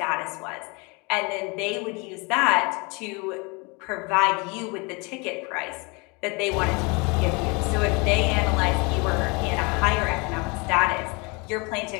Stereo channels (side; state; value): right; quieter; 29.1 dB